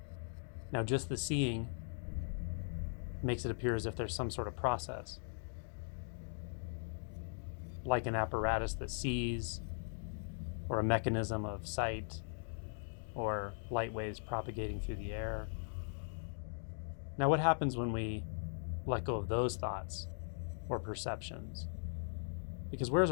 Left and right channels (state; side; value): silent; right; digital silence